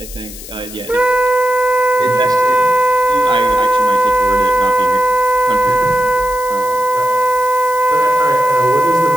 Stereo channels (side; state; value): left; noise; hiss, 15 dB below the sound